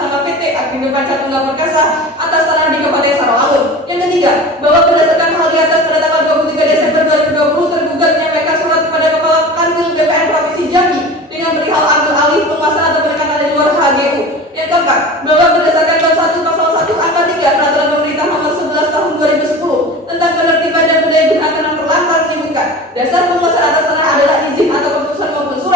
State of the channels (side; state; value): both; normal; correlation 0.35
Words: nama PT Agrindo Panca Tunggal Perkasa atas tanah di Kabupaten Sarawak. Yang ketiga, bahwa berdasarkan hal di atas pada tanggal 23 Desember 2020 tergugat menyampaikan surat kepada Kepala Kanwil BPN Provinsi Jambi dengan perihal ambil alih penguasaan atau penekanan di luar HGU. Yang keempat, bahwa berdasarkan bab 1 pasal 1 angka 3 peraturan pemerintah nomor 11 tahun 2010 tentang penertiban dan pendaya gunaan tanah terlantar menyebutkan dasar penguasaan atas tanah adalah izin atau keputusan maupun